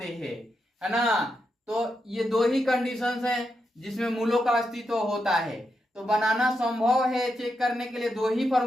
हैं, है ना। तो ये दो ही कंडीशंस हैं जिसमें मूलों का अस्तित्व होता है। तो बनाना संभव है चेक करने के लिए दो ही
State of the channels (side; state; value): both; normal; correlation 0.85